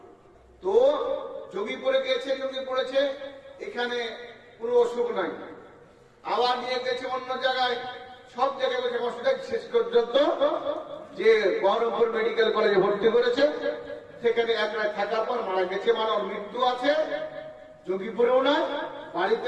তো যোগীপুরে গেছে, যোগী পড়েছে, এখানে কোনো অসুখ নাই, আবার নিয়ে গেছে অন্য জায়গায়, সব জায়গায় বসে অসুবিধা, শেষ পর্যন্ত যে বহরমপুর মেডিকেল কলেজে ভর্তি করেছে, সেখানে এক রাত থাকার পর মারা গেছে। মানে ওর মৃত্যু আছে যোগীপুরেও না,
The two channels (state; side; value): identical; both; correlation 1.00